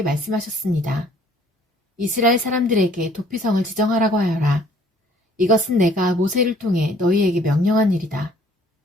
말씀하셨습니다. 이스라엘 사람들에게 도피성을 지정하라고 하여라. 이것은 내가 모세를 통해 너희에게 명령한 일이다.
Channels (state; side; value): normal; both; correlation 0.58